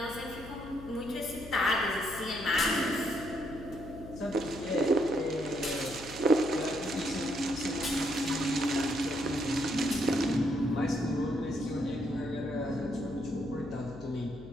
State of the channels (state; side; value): noise; left; hum, 14 dB below the sound